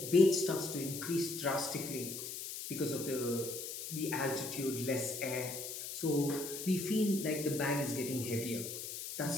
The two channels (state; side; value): noise; left; hiss, 7 dB below the sound